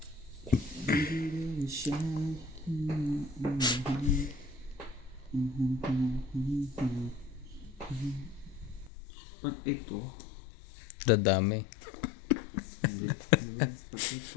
Baby, shine. Pag ito, Dadami. hindi. Pag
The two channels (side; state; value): right; drops out; at 8.9 s